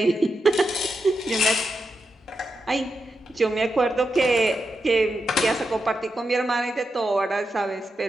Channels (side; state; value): both; normal; correlation 0.86